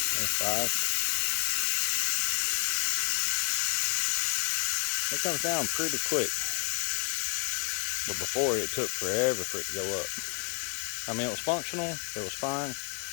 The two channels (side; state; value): right; quieter; 35.9 dB